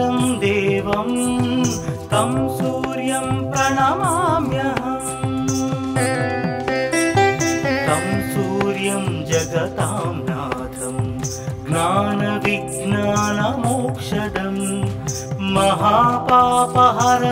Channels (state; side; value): identical; both; correlation 1.00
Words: देवं तं सूर्यं प्रणमाम्यहम्। तं सूर्यं जगतां नाथं ज्ञानविज्ञानमोक्षदं